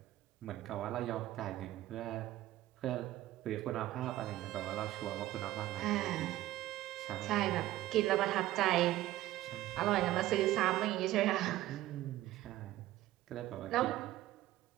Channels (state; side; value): quieter; left; 15.3 dB